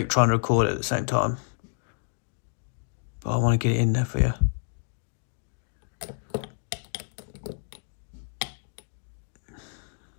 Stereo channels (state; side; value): silent; right; digital silence